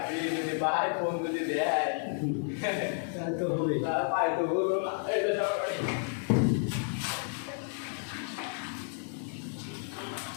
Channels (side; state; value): right; silent; 57 dB below the other